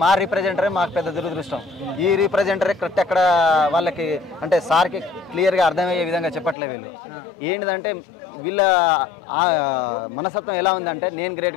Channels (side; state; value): right; drops out; at 6.6 s